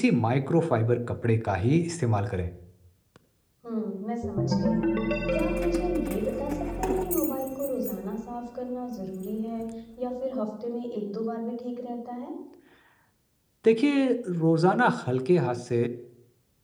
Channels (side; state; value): both; identical; correlation 1.00